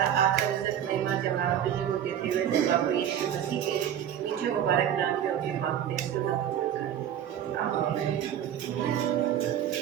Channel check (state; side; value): quieter; left; 10.0 dB